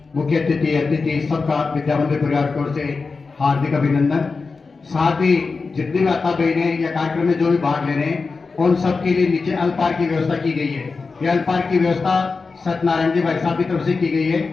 मुख्य अतिथि सबका विद्या मंदिर परिवार की ओर से हार्दिक अभिनंदन। साथ ही जितनी माता बहनें या कार्यक्रम में जो भी भाग ले रहे हैं, उन सबके लिए नीचे अल्पार की व्यवस्था की गई है। ये अल्पार की व्यवस्था सत्यनारायण जी भाई साहब की तरफ से की गई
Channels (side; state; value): right; quieter; 4.4 dB